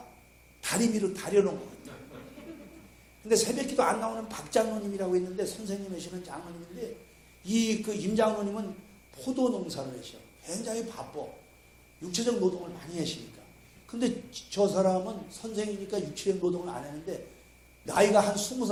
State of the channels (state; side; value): identical; both; correlation 1.00